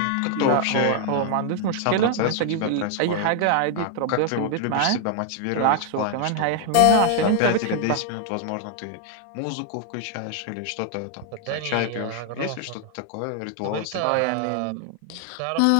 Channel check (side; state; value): both; different; correlation 0.00